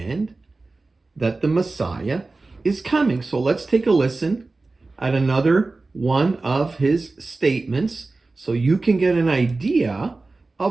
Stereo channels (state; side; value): quieter; left; 3.5 dB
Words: that the Messiah is coming. So let's take a listen at another one of his statements so you can get an idea